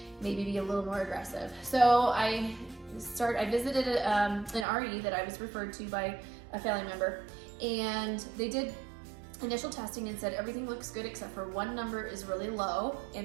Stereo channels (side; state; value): left; drops out; at 4.7 s